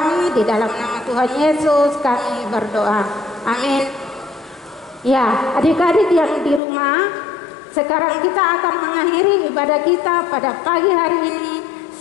di dalam nama Tuhan Yesus kami berdoa. Amin. Ya, adik-adik yang di rumah, sekarang kita akan mengakhiri ibadah kita pada pagi hari ini.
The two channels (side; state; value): right; drops out; at 6.6 s